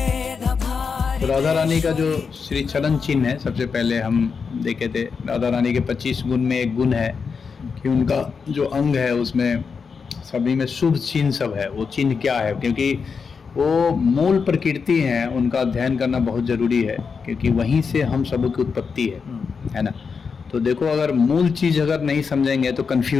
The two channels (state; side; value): quieter; right; 5.6 dB